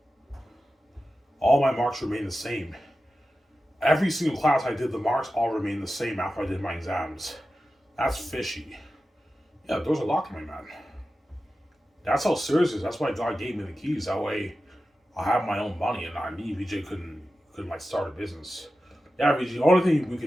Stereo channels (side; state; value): both; normal; correlation 0.93